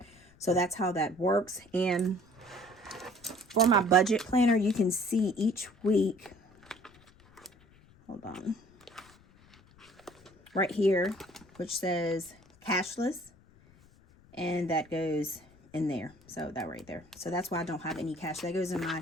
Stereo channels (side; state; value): left; noise; rumble, 27 dB below the sound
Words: So that's how that works. And for my budget planner, you can see each week, hold on, right here, which says cashless, and that goes in there. So that right there. So that's why I don't have any cash. That goes in